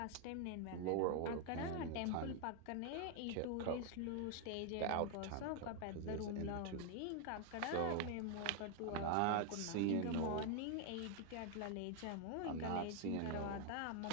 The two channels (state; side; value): different; both; correlation 0.00